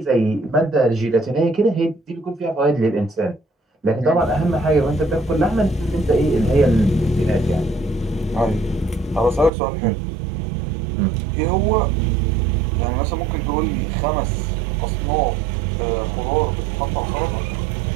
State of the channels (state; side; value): drops out; left; at 9.5 s